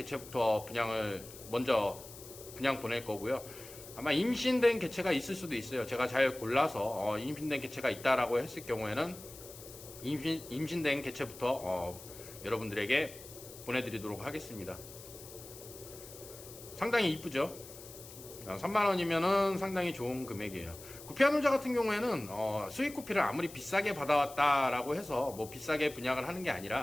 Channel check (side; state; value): left; noise; hiss, 16 dB below the sound